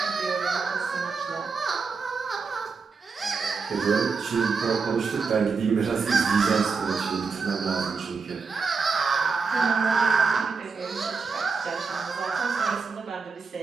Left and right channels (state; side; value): quieter; left; 5.0 dB